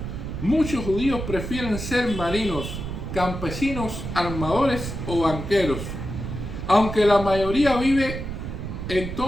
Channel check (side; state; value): right; noise; rumble, 6 dB below the sound